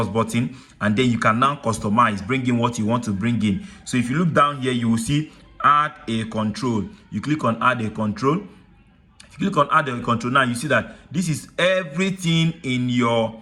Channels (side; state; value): both; identical; correlation 1.00